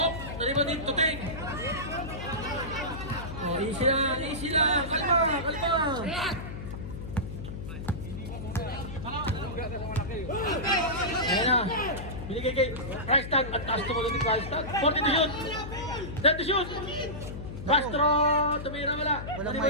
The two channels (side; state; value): left; noise; hum, 8 dB below the sound